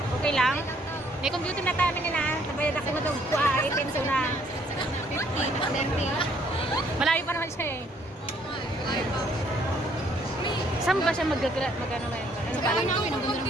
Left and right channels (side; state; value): both; normal; correlation 0.65